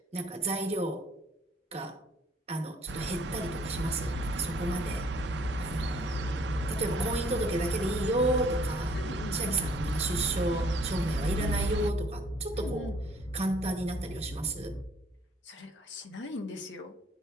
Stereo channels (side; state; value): both; normal; correlation 0.61